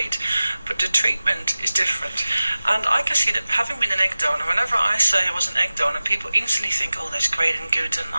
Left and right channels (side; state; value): both; inverted; correlation -0.96